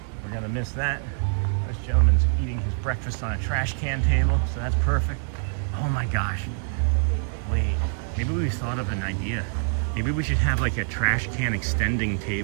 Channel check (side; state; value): left; silent; 60 dB below the other